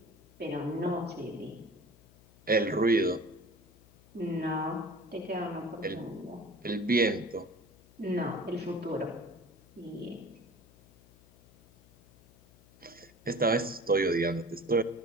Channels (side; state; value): left; noise; hum, 26 dB below the sound